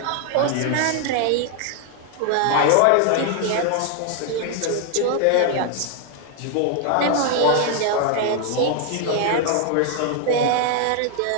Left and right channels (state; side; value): different; both; correlation 0.00